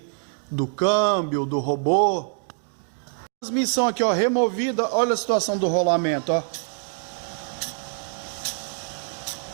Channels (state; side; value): silent; left; 62 dB below the other